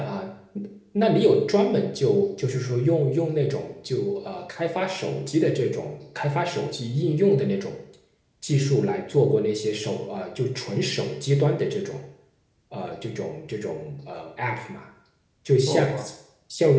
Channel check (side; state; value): both; identical; correlation 1.00